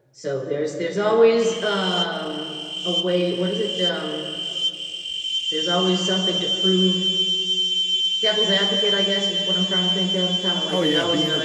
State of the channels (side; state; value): both; identical; correlation 1.00